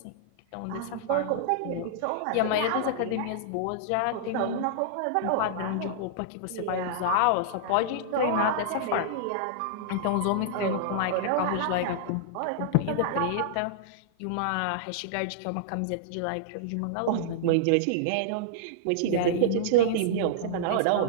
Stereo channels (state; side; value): different; both; correlation -0.01